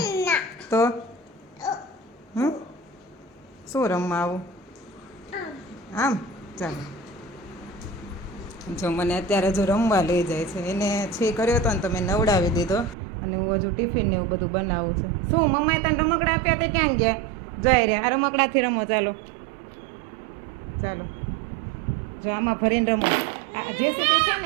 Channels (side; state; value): left; drops out; at 13.0 s